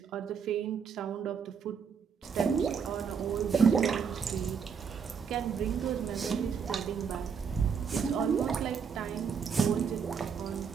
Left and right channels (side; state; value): left; quieter; 6.4 dB